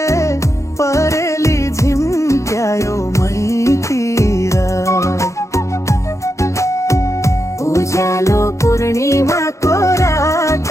परेली झिम्क्यायो मैतिर। उज्यालो पूर्णिमाको रात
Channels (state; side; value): late; right; 0.15 ms